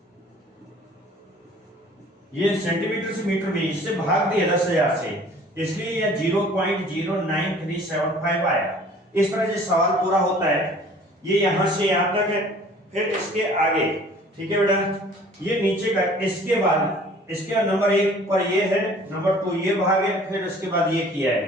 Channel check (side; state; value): both; normal; correlation 0.51